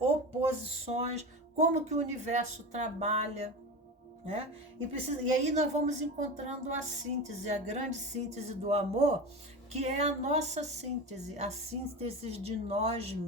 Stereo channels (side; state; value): both; normal; correlation 0.26